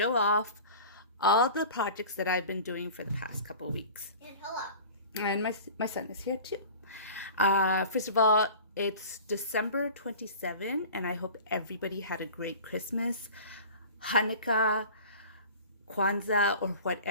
off all the projects that I've been doing for the past couple weeks. And hello. And my son is here too. First of all, it's December 27 and I hope everybody had a great Christmas, Hanukkah, Kwanzaa, or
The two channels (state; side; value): inverted; both; correlation -0.39